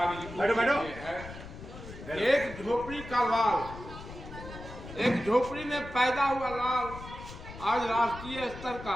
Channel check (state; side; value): noise; left; rumble, 13 dB below the sound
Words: के लिए है। एक झोपड़ी का लाल, एक झोपड़ी में पैदा हुआ लाल आज राष्ट्रीय स्तर का